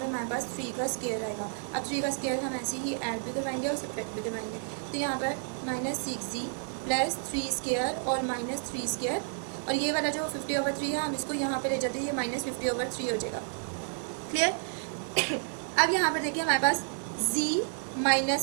हमारे पास 3 का स्केयर आएगा। अब 3 का स्केयर हम ऐसे ही ऐड भी करवाएंगे और सब्ट्रैक्ट भी करवाएंगे, तो यहाँ पर -6z प्लस 3² और -3², और ये वाला जो 50/3 है हम इसको यहाँ पे ले जाते हैं, ये -50/3 हो जाएगा, क्लियर। अब यहाँ पर देखिए हमारे पास z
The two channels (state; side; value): silent; left; digital silence